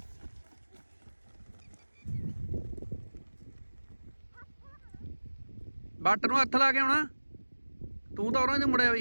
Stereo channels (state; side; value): inverted; both; correlation -1.00